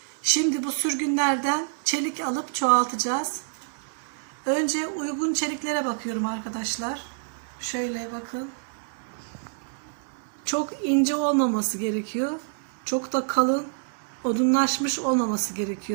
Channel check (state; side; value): silent; left; digital silence